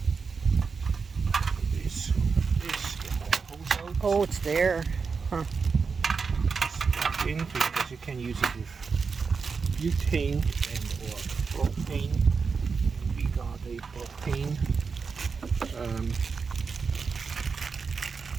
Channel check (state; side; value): quieter; left; 5.2 dB